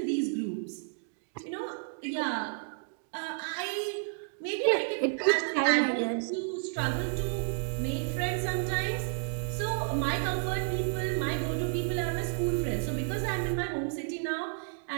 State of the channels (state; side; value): silent; left; digital silence